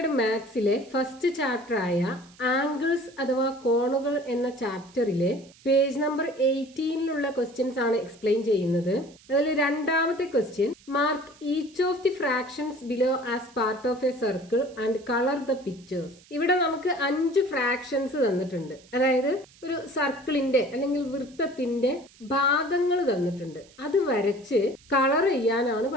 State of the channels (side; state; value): right; noise; hiss, 26 dB below the sound